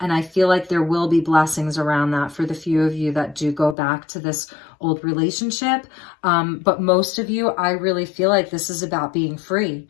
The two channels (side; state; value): right; drops out; at 3.8 s